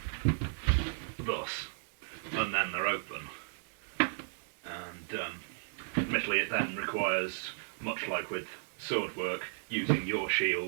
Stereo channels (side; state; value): left; silent; digital silence